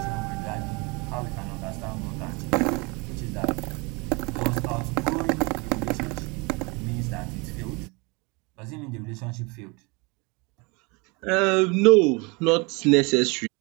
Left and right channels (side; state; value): left; quieter; 28.4 dB